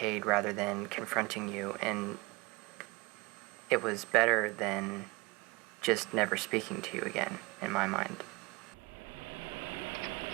rather than confronting you. And it was better than just never speaking to you again, in my mind.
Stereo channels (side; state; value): left; quieter; 23.9 dB